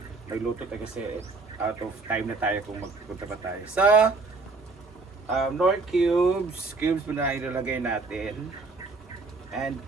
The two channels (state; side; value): quieter; left; 3.8 dB